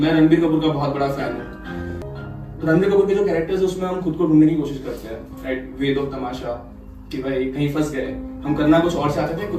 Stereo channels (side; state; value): both; identical; correlation 1.00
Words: रणबीर कपूर का बहुत बड़ा फैन हूँ। तो रणबीर कपूर के जो कैरेक्टर्स है उसमें हम खुद को ढूंढने की कोशिश करते हैं, राइट, वेद ऑफ तमाशा, कि भाई कहीं फंस गए, हम करना कुछ और चाहते थे,